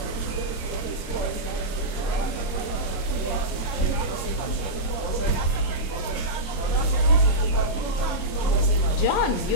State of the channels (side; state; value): right; late; 26 ms